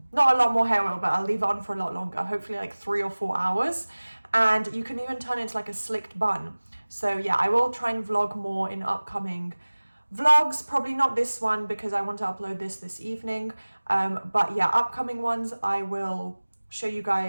a lot more hair oil, but I'll leave it on for a lot longer, hopefully like 3 or 4 hours. And you can even turn it into like a slicked bun. So yeah, I will try and vlog more in upcoming vlogs, probably not this one because I want to upload this evening, but yeah, upcoming ones I will show you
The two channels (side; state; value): both; inverted; correlation -1.00